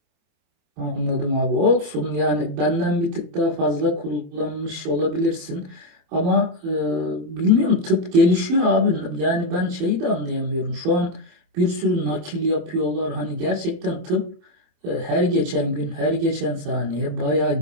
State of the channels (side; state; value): left; late; 27 ms